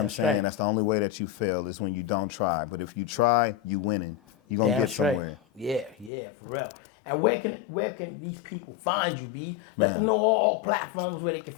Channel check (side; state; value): right; drops out; at 6.1 s